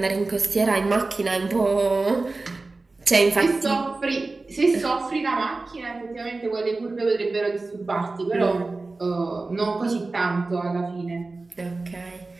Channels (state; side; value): quieter; left; 3.5 dB